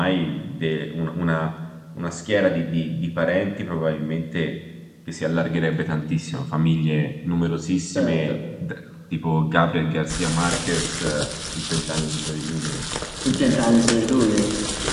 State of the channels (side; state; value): both; identical; correlation 1.00